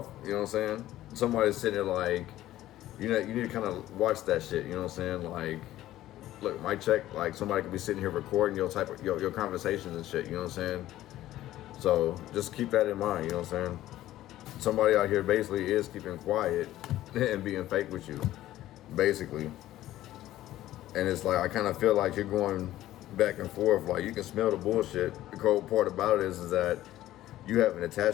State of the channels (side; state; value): right; quieter; 14.3 dB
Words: You know what I'm saying? Somebody's sitting there like, you know, you need to kind of watch that shit. You know what I'm saying? Like, look, mic check. Like, somebody could be sitting here recording your conversations and shit. You know what I'm saying? So just keep that in mind. You know what I'm saying? Somebody out here basically is keeping quiet and being fake with you, basically. And it's like, I kind of feel like you're going back and forth. Like, you can smell the bullshit. The cold part about it is that you have an